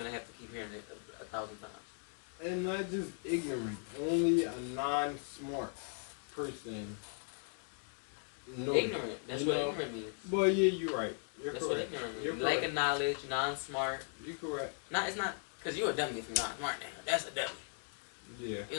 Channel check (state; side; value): silent; right; 53 dB below the other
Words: have to keep hearing it 1,000 times. And not just ignorant, only a non-smart person. Ignorant. That's what ignorant means. Well, yeah, you're right. That's correct. What ignorant means. You're lack of knowledge, non-smart. You're correct. It's not, because you're a dummy if you're not smart now. That's a dummy. Yeah. You